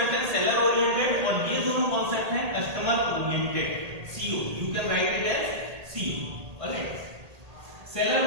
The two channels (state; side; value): late; left; 1.8 ms